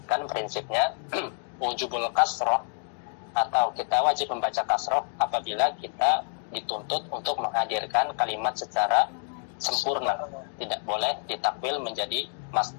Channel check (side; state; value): right; silent; 58 dB below the other